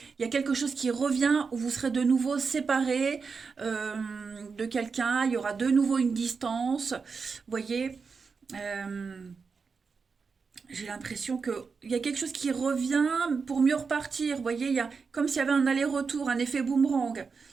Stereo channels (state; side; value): quieter; left; 5.1 dB